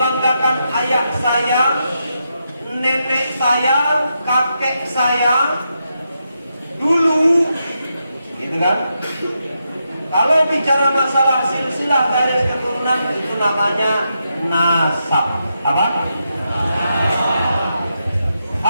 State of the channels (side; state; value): both; inverted; correlation -0.84